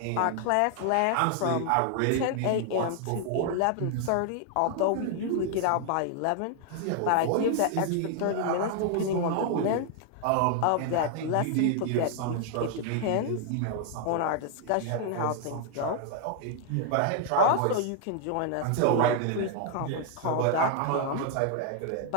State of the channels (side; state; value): both; different; correlation 0.00